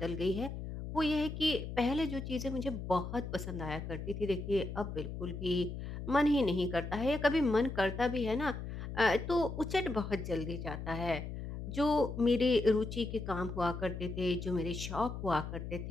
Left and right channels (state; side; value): noise; left; hum, 7 dB below the sound